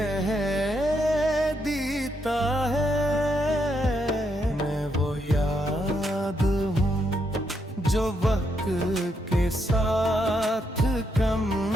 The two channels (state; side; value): normal; both; correlation 0.78